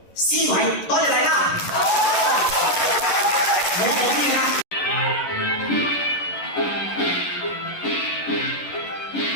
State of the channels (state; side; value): late; right; 11 ms